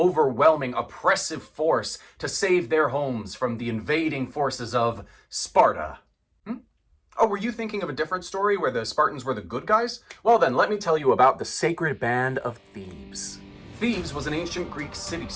oppressive force to save their homes from the invading forces of Sparta. Oh, were you thinking of a different story where the Spartans were the good guys? Well then, let me tell you about the sacred band of Thebes. Thebes was an ancient Greek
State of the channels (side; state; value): both; identical; correlation 1.00